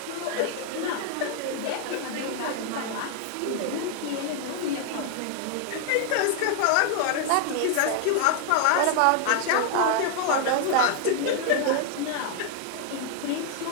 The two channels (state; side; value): different; both; correlation 0.00